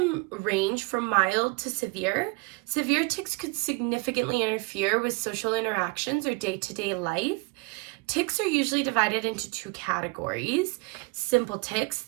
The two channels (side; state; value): left; quieter; 28.8 dB